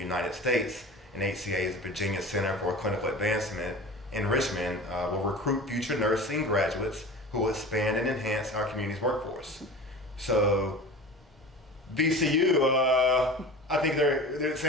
States, and HCA's Virginia Center for Clinical Advancement in Richmond will recruit future nursing graduates who will expand and enhance our community's workforce. So VCU, I think it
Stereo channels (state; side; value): normal; both; correlation 0.35